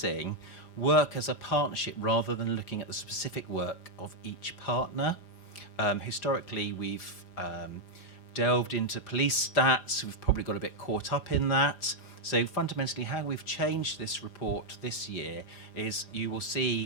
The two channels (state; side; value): late; right; 4.9 ms